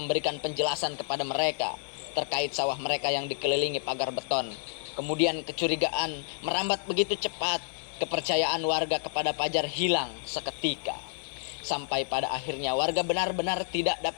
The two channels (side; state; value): right; silent; digital silence